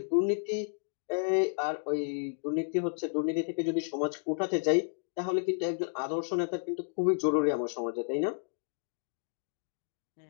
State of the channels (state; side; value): silent; right; digital silence